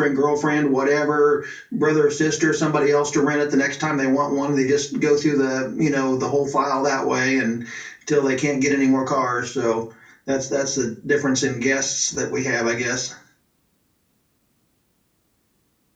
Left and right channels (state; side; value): identical; both; correlation 1.00